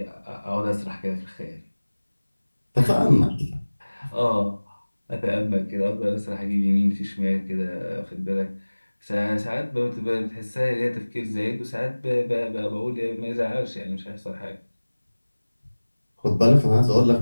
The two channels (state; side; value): inverted; both; correlation -1.00